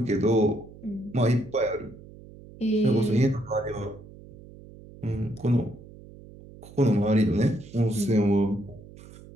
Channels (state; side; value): noise; right; hum, 19 dB below the sound